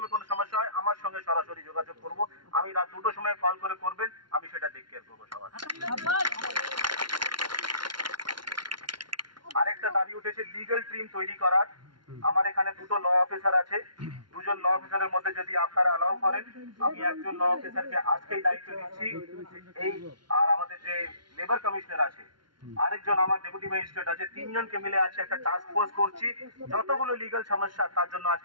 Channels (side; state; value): left; late; 0.72 ms